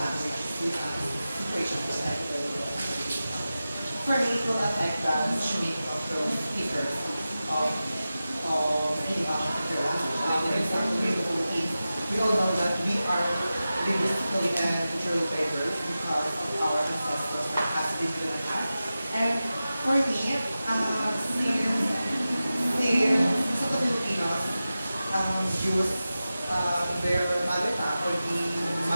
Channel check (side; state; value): both; inverted; correlation -0.94